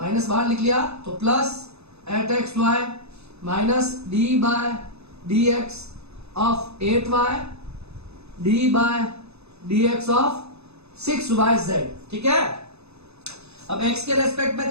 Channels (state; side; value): late; left; 0.80 ms